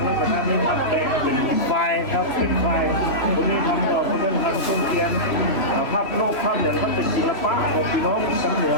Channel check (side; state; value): right; late; 3.0 ms